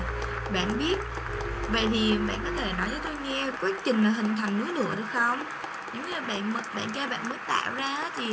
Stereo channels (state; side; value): identical; both; correlation 1.00